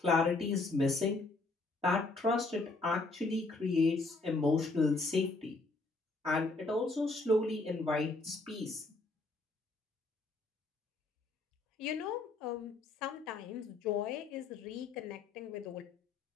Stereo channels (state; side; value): quieter; right; 3.3 dB